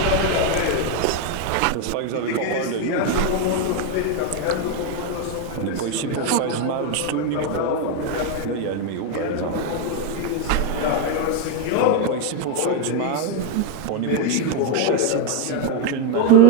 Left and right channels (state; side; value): different; both; correlation 0.01